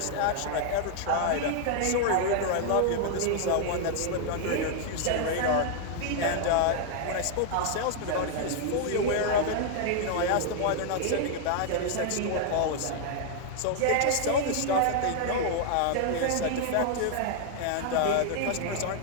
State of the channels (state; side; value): different; both; correlation 0.00